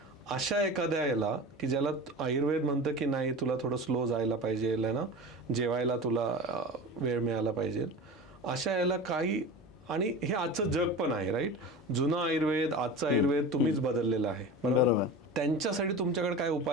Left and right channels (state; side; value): normal; both; correlation 0.31